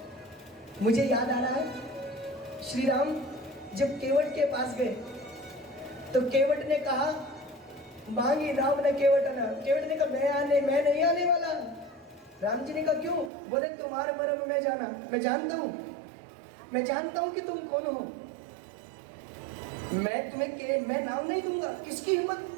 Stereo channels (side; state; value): left; drops out; at 13.3 s